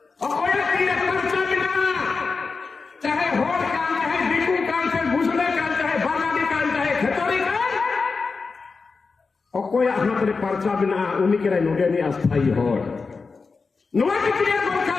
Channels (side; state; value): right; quieter; 4.5 dB